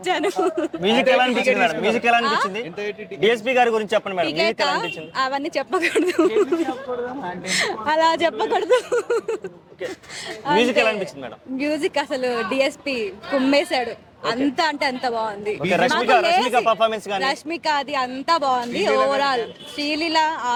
మ్యూజిక్ ఎలా అనిపించింది మేడం? మ్యూజిక్ ఎలా అనిపించింది? డిఎస్పీ గారి గురించి చెప్పండి మేడం. మ్యూజిక్ ఎలా అనిపించింది? అవన్నీ చెప్పకూడదు, అలా చెప్పకూడదు. మ్యూజిక్ ఎలా అనిపించింది మేడం? మ్యూజిక్ అసలు డిఎస్పీ కుమ్మేశాడు. అంత అంటే అంత బాగుంది. రష్మిక అది అంతా బాగుంది. ఓవరాల్ శ్రీలీల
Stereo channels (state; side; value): identical; both; correlation 1.00